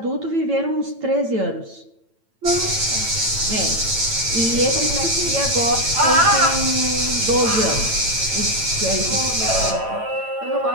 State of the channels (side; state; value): left; late; 8.9 ms